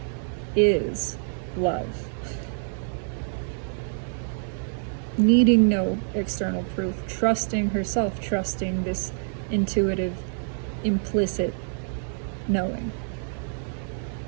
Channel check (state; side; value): silent; left; digital silence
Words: is love. Needing no external proof, trusting herself, trusting this intuitive, implicit knowing.